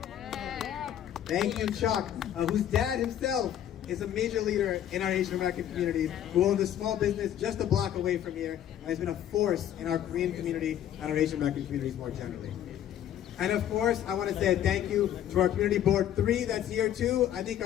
Thank you, Chuck, whose dad himself is a major leader in our Asian American community, who owns a small business just a block away from here, and has been a force in our Korean community and our Asian American communities more generally. And of course, I want to say a thank you to our Community Board 3 that's here too. I think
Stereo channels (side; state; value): right; quieter; 10.8 dB